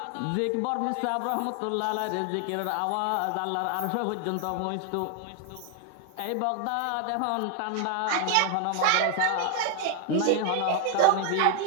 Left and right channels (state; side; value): different; both; correlation 0.00